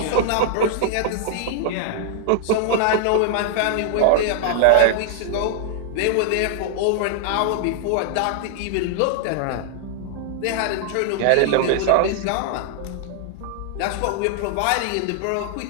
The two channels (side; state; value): both; different; correlation -0.01